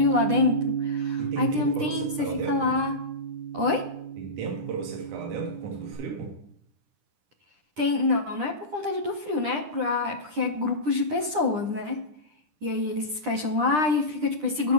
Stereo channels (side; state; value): left; late; 9.9 ms